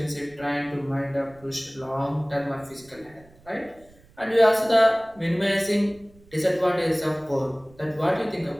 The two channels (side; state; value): right; noise; rumble, 27 dB below the sound